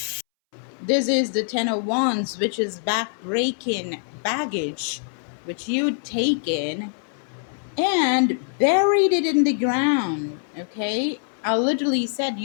This is the Ten of Wands, which is back-breaking baggage, which you'd taken and buried it in the ground. Okay, I literally said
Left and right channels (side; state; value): right; silent; 63 dB below the other